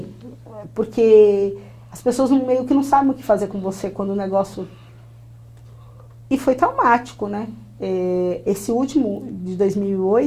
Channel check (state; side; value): identical; both; correlation 1.00